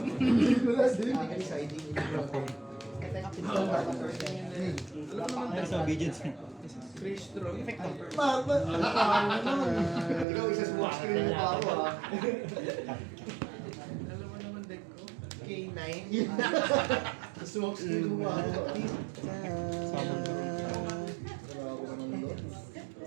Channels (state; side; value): drops out; left; at 10.2 s